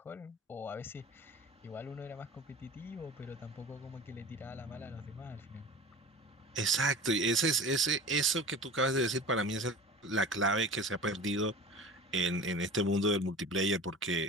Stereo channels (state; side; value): normal; both; correlation 0.37